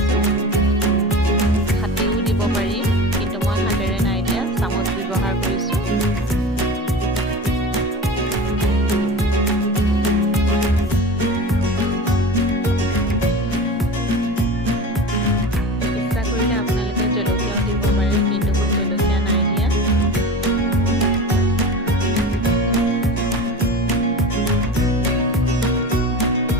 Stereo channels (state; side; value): normal; both; correlation 0.32